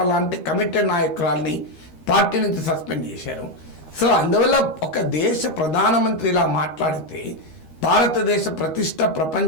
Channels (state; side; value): late; right; 13 ms